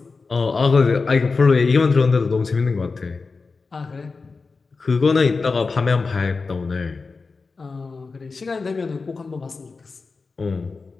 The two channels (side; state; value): right; quieter; 4.3 dB